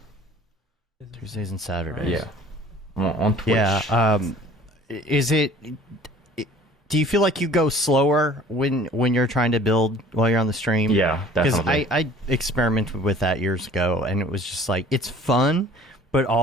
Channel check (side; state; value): both; normal; correlation 0.49